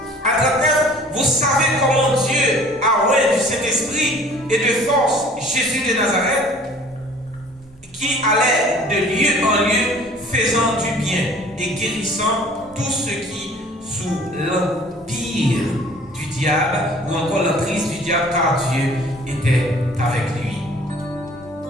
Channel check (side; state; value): both; normal; correlation 0.51